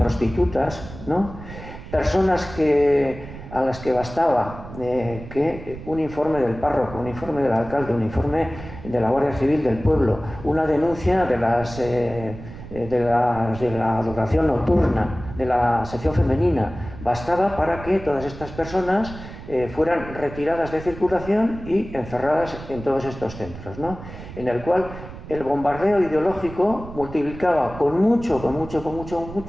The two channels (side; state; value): right; noise; rumble, 13 dB below the sound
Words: ¿no? Personas a las que bastaba que un informe del párroco, un informe del alcalde, un informe de la Guardia Civil del pueblo, una denuncia de las de la adoración nocturna, de la sección femenina, bastaba para que todas estas personas fueran retiradas de circulación y encerradas en todos estos centros, ¿no? En el cual el bombardeo ideológico multiplicaba con mucho